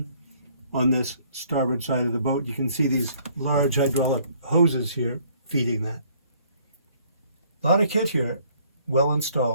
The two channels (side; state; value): both; inverted; correlation -0.62